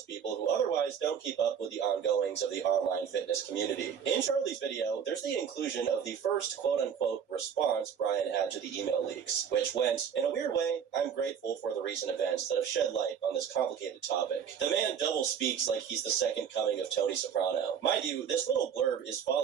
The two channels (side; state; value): left; quieter; 7.8 dB